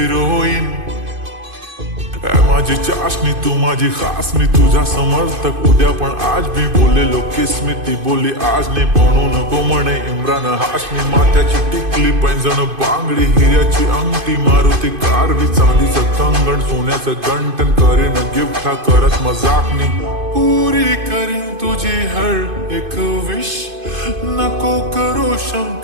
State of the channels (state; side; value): late; left; 2.5 ms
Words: माझी चाशनी तू माझी खास, मी तुझा समर्थक उद्या पण आज मी बोलेलो किस मी. ती बोली आज नाही बनू नको म्हणे इम्रान हाशमी. माथ्याची टिकली पैंजण बांगडी हिऱ्याची अंगठी, मारुती कारवी चांदीचं कंगण सोन्याचं गंटन. करेन गिफ्ट हा करत मजाकनी, पुरी करीन तुझी हर एक विश. नको करू